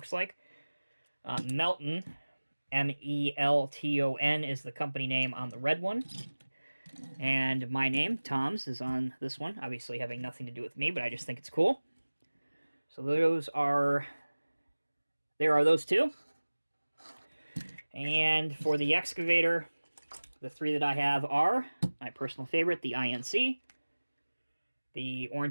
like, Melton, M-E-L-T-O-N is the company name on the red one. And my name, Tom's, is on this one, obviously having nothing to do with me, but I just think it's cool. So there are those two. And for the excavator, The three that I have are my personal favorite, the INC, the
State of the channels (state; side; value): inverted; both; correlation -1.00